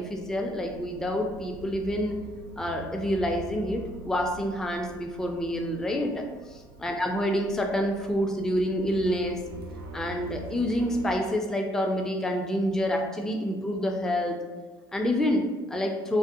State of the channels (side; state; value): both; normal; correlation 0.72